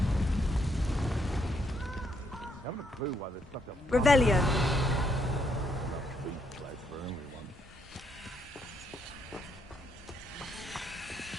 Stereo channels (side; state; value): both; normal; correlation 0.74